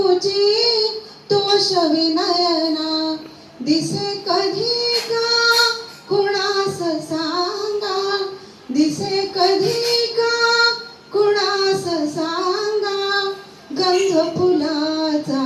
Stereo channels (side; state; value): both; identical; correlation 1.00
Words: तोष विनयना दिसे कधी का कुणास सांगा दिसे कधी का कुणास सांगा गंध फुलाचा